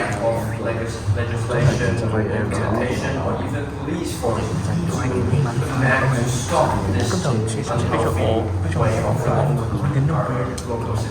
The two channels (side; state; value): both; identical; correlation 1.00